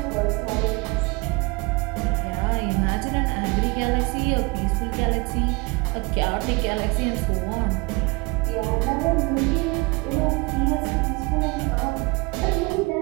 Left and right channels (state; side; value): quieter; left; 26.4 dB